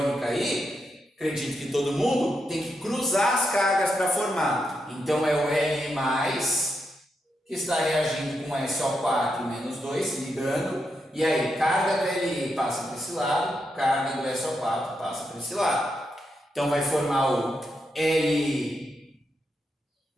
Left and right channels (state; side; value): normal; both; correlation 0.84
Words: aí, acredito que todo mundo, tem que cruzar as cargas para formar. Então é o Li+, que está reagindo com SO4 menos 2, se ligando. E aí, carga do Li passa para esse lado, carga do SO4 passa para esse lado. Então vai formar o Li2